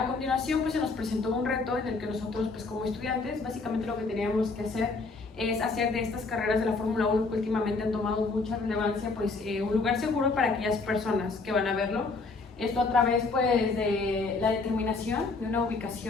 continuación pues se nos presentó un reto en el que nosotros pues como estudiantes básicamente lo que teníamos que hacer es hacer de estas carreras de la Fórmula 1 que últimamente han tomado mucha relevancia pues un lugar seguro para aquellas personas que van a verlo. Esto a través pues de la determinación de una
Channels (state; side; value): quieter; right; 3.9 dB